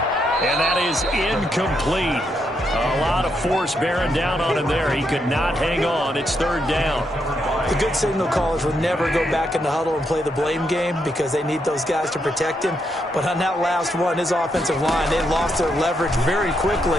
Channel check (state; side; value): normal; both; correlation 0.79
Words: And that is incomplete. A lot of force bearing down on him there. He could not hang on. It's 3rd down. The good signal callers will never go back in the huddle and play the blame game because they need those guys to protect him. But on that last one, his offensive line, they lost their leverage very